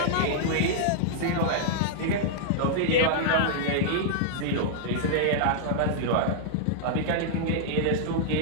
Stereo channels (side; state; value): both; different; correlation -0.01